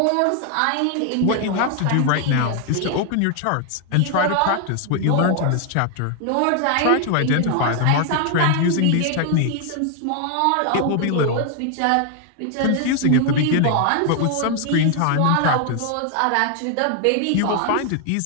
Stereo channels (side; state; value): both; different; correlation 0.00